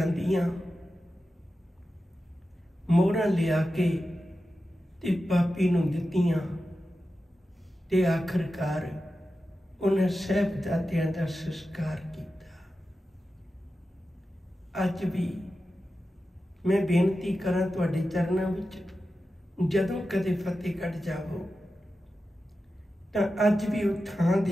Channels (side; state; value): both; normal; correlation 0.92